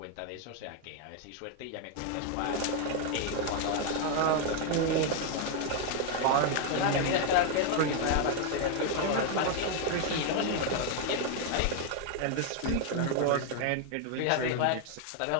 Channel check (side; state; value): both; different; correlation 0.00